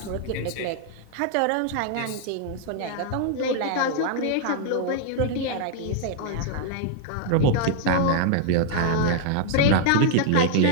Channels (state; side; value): different; both; correlation 0.00